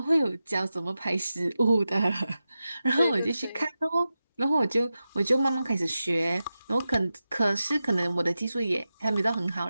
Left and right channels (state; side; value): inverted; both; correlation -0.92